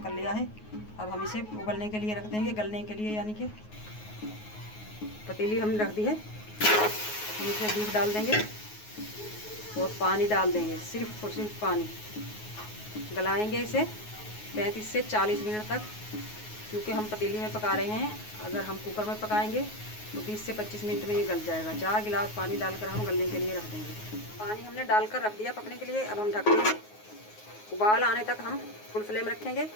कर लिया है। अब हम इसे उबलने के लिए रख देंगे, गलने के लिए, यानी कि पतीली हमने रख दी है। हम इसमें बीफ डाल देंगे और पानी डाल देंगे, सिर्फ और सिर्फ पानी। गलाएंगे इसे 35 से 40 मिनट तक, क्योंकि हम पतीली में पका रहे हैं। अगर हम कुकर में पकाएंगे तो 20 से 25 मिनट में ये गल जाएगा। 4 गिलास पानी डालकर हम गलने के लिए रख देंगे। पानी हमने डालकर रख दिया पकने के लिए। अब हम ढक देंगे, उबाल आने तक हम फुल फ्लेम रखेंगे,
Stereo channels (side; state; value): right; late; 9.4 ms